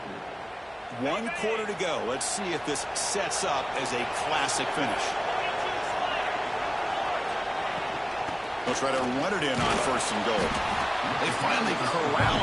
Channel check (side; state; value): both; identical; correlation 1.00